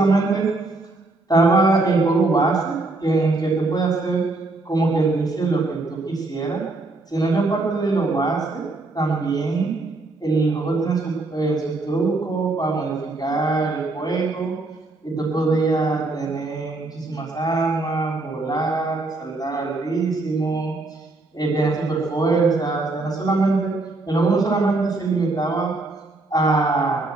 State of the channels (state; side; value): quieter; left; 3.2 dB